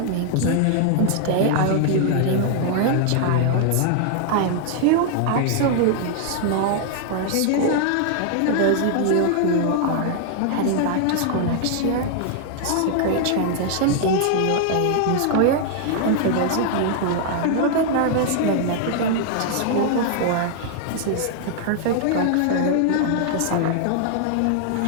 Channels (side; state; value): both; different; correlation 0.00